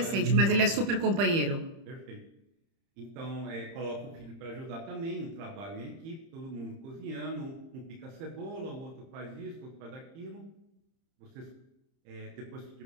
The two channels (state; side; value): late; left; 30 ms